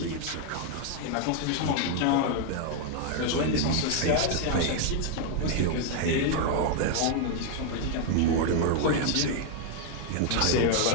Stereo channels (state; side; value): different; both; correlation 0.00